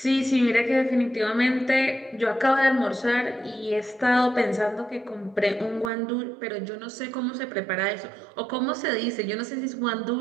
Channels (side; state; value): left; drops out; at 5.9 s